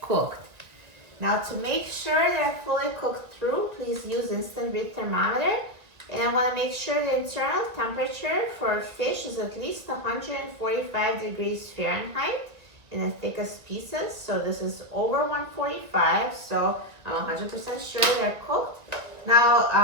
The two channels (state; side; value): late; left; 1.7 ms